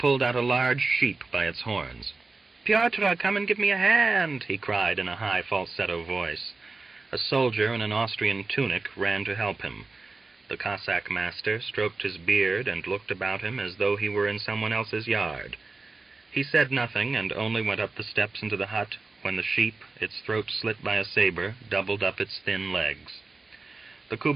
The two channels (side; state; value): left; quieter; 3.8 dB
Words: out a large sheep by its horns. "Pyotr, come and give me a hand," he cried in a high falsetto voice. A soldier in an Austrian tunic ran to help him. The Cossack master stroked his beard and looked about him as though he were in someone else's yard. He said nothing and only went up the steps into the hut when the sheep, its throat slit by a saber, doubled up its thin legs. The